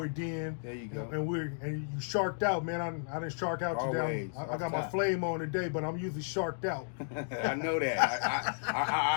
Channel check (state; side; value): silent; right; digital silence